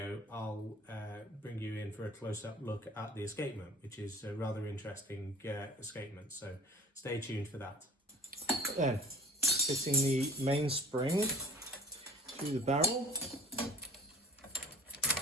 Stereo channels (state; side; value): normal; both; correlation 0.46